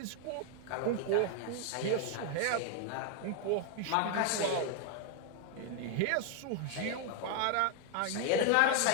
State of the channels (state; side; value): different; both; correlation 0.00